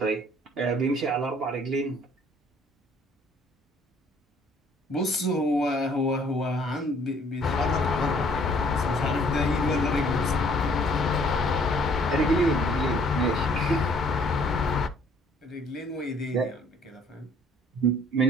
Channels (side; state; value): both; normal; correlation 0.59